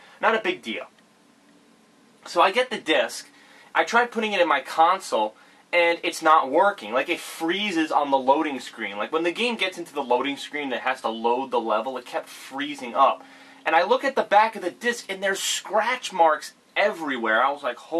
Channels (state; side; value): identical; both; correlation 1.00